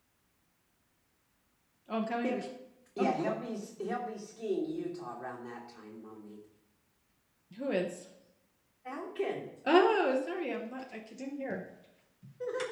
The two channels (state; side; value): identical; both; correlation 1.00